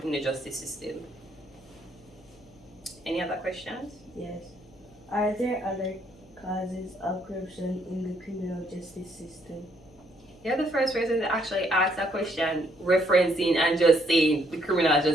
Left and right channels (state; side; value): noise; left; hum, 27 dB below the sound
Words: in the justice system. Any other questions? Yes. Are there other causes of corruption in the criminal justice system? You're the first person to actually ask that question, referencing and just saying the criminal